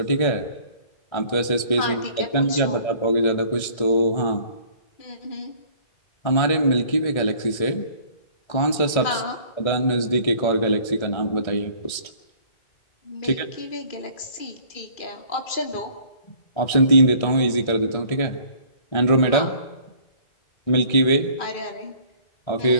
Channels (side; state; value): right; late; 1.6 ms